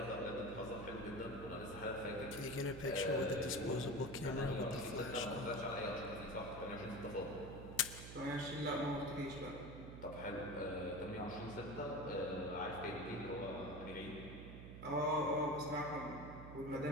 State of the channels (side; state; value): right; noise; hum, 10 dB below the sound